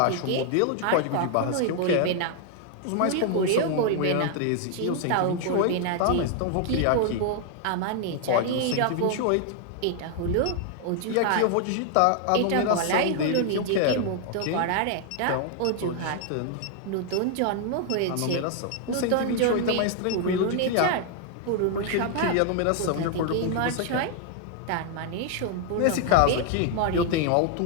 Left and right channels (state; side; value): different; both; correlation 0.00